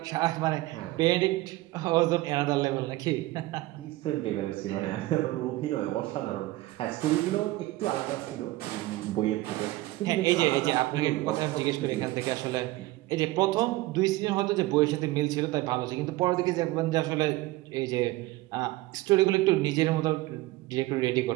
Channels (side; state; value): left; quieter; 18.5 dB